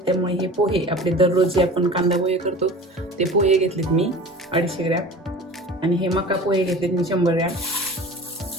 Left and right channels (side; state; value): both; normal; correlation 0.39